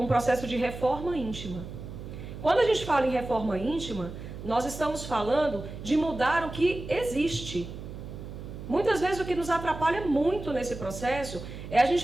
um processo de reforma íntima. Quando a gente fala em reforma íntima, nós estamos falando de mudar o que existe. Muitas vezes o que nos atrapalha muito nesse processo é a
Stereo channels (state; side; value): noise; right; hum, 11 dB below the sound